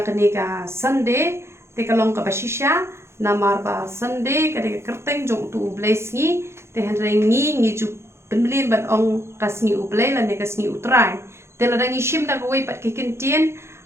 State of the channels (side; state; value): left; late; 0.13 ms